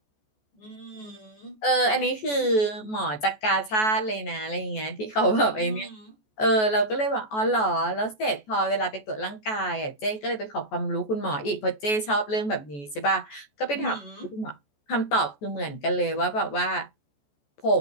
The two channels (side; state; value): right; late; 14 ms